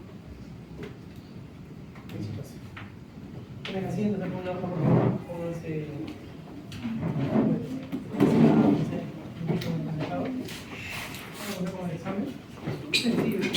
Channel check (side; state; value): both; identical; correlation 1.00